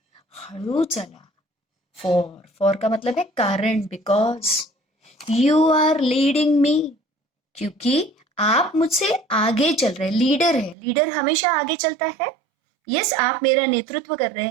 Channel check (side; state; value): left; drops out; at 10.8 s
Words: हळू चला. फॉर का मतलब है कारण, बिकॉज यू आर लीडिंग मी, क्योंकि आप मुझसे आगे चल रहे. लीडर है, लीडर हमेशा आगे चलता है. यस, आप मेरा नेतृत्व कर रहे